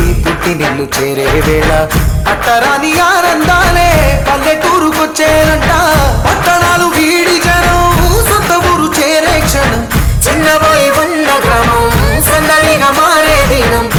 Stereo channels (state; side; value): identical; both; correlation 1.00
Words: పుట్టి నిన్ను చేరే వేళ అట్టరాని ఆనందాలే పల్లెటూరుకొచ్చేనంట పట్టణాలు వీడి జనం సొంత ఊరు చేరే క్షణం చిన్నబోయి బండ గ్రామం సందడిగా మారే దినం